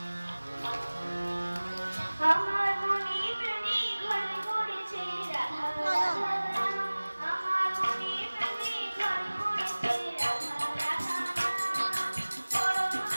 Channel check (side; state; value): both; inverted; correlation -1.00